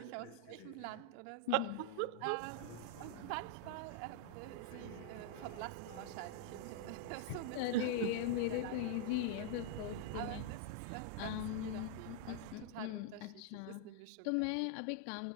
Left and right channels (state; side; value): different; both; correlation -0.01